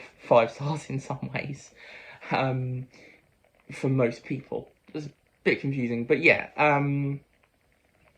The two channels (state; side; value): identical; both; correlation 1.00